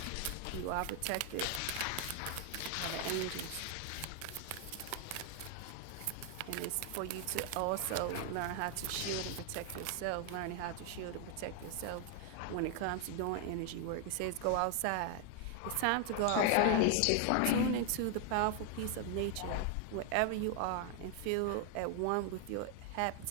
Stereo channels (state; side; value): different; both; correlation 0.00